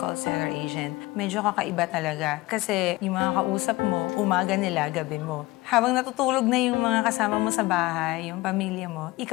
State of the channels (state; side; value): quieter; right; 20.4 dB